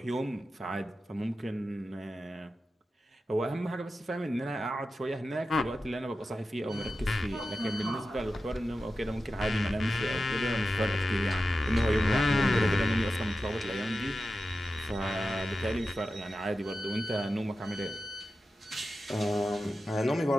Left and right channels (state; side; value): normal; both; correlation 0.92